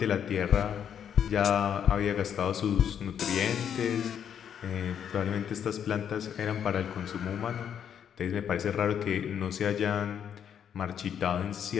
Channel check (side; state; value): right; quieter; 8.6 dB